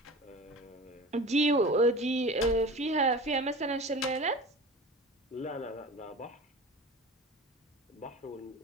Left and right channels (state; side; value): normal; both; correlation 0.36